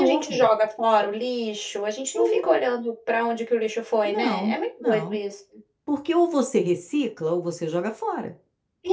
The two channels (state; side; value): identical; both; correlation 1.00